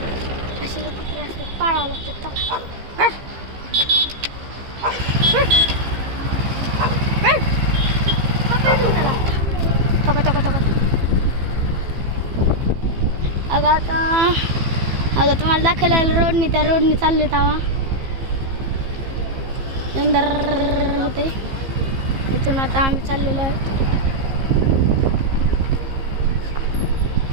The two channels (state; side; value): late; left; 15 ms